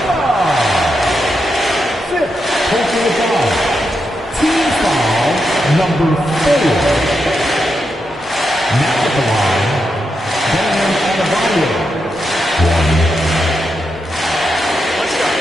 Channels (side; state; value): both; normal; correlation 0.85